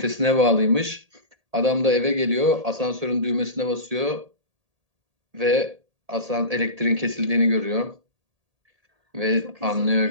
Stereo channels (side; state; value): left; late; 1.8 ms